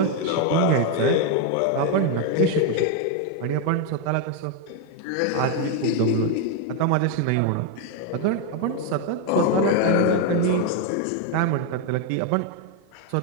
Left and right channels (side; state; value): both; different; correlation 0.01